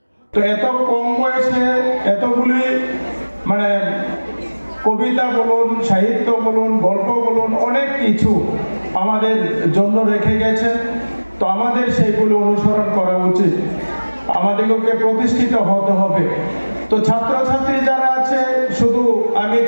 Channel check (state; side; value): inverted; both; correlation -1.00